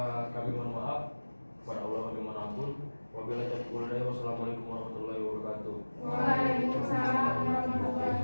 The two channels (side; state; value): both; inverted; correlation -1.00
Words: kami mohon maaf. Kepada Allah kami mohon ampun. Wabillahi taufiq wal hidayah. Wassalamualaikum warahmatullahi wabarakatuh. Waalaikumsalam warahmatullahi